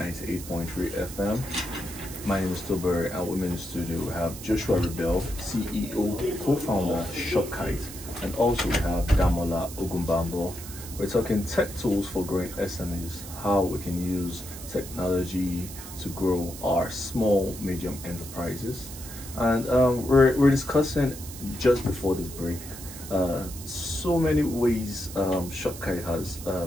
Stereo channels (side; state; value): right; noise; hiss, 13 dB below the sound